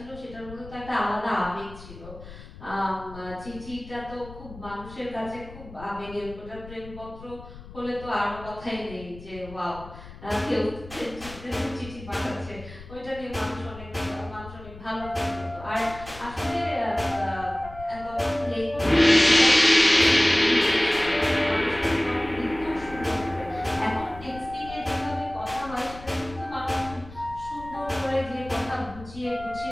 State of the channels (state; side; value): noise; left; rumble, 16 dB below the sound